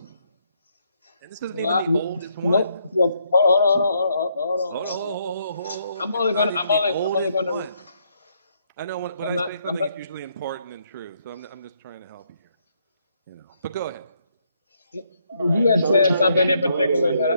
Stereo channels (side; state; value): both; inverted; correlation -0.74